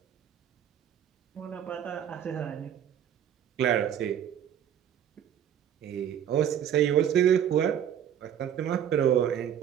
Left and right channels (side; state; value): left; quieter; 9.7 dB